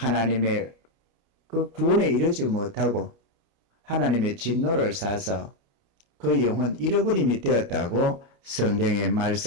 그 구원에 이르지 못하고 하나님의 진노를 사서 그 영혼 잃어버림이 되었다고 성경에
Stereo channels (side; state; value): left; late; 29 ms